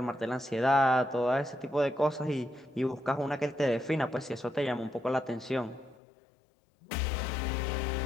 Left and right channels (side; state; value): right; drops out; at 6.0 s